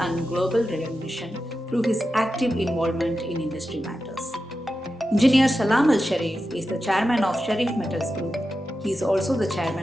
and global recognition through his active involvement in industry matters. Engineer Salam Al Sharif is the chairman of Sharif Metals Group. He is also the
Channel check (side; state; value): both; normal; correlation 0.91